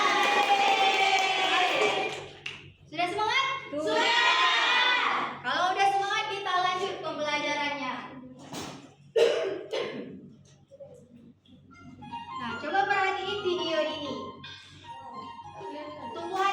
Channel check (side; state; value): both; identical; correlation 1.00